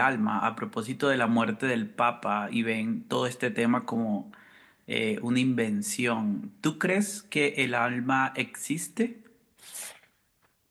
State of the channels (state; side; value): identical; both; correlation 1.00